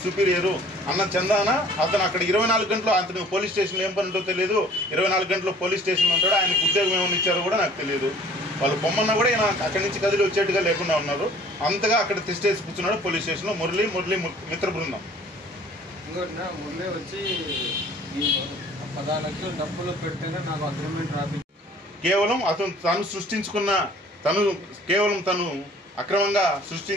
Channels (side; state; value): both; normal; correlation 0.52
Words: సుపీరియరు అన్న చందాన అతను అక్కడ 24 గంటలు, అతను పోలీస్ స్టేషన్లో ఏం పని ఉంటో తెలియదు. 24 గంటలు పోలీస్ స్టేషన్లో ఉంటాడు. ఆయనకు ఉద్యోగం ఏమైనా ఇచ్చారో కూడా నాకు తెలియదు. వాళ్ళు పొమ్మన్నా కూడా ఈయన అక్కడి నుంచి కదిలి వచ్చేట్టుగా లేకుండా ఉన్నారు. అంతగా అక్కడ తిష్టేసి కూర్చున్నాడు పోలీస్ స్టేషన్లో మురళి మిత్ర బృందం. ఇంకోటి మురళి వచ్చి 10 లక్షలు డబ్బులు పెట్టినా నాకు అగ్రిమెంట్ రాపి కేవలం తను అక్రమంగా